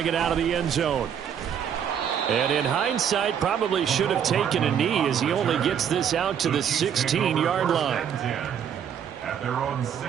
it out of the end zone. And in hindsight, probably should have taken a knee as he only gets this out to the 16-yard line. At their own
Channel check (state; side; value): quieter; left; 8.5 dB